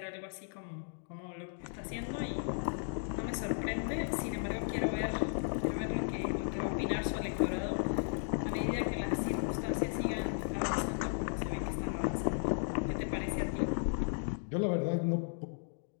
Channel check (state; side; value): silent; right; digital silence